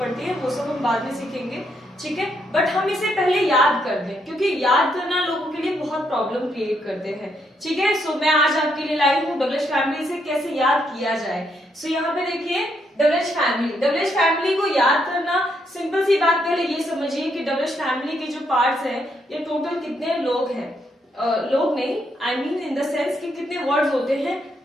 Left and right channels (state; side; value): normal; both; correlation 0.76